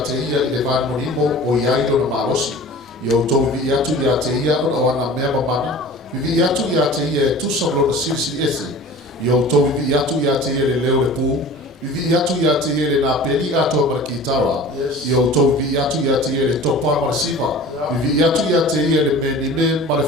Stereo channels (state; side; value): normal; both; correlation 0.41